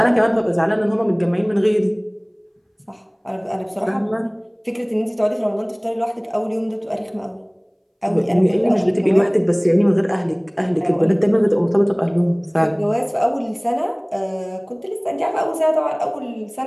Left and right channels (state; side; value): identical; both; correlation 1.00